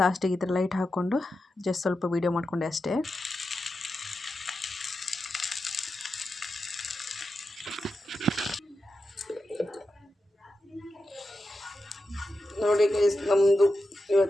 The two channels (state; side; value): normal; both; correlation 0.90